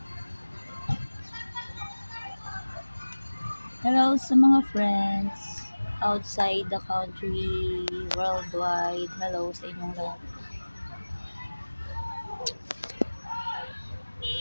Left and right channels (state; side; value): inverted; both; correlation -1.00